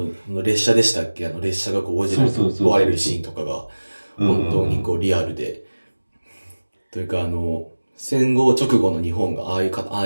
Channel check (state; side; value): inverted; both; correlation -1.00